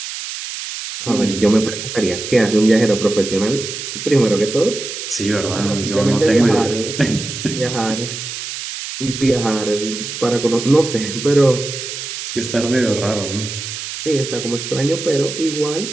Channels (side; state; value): right; noise; hiss, 7 dB below the sound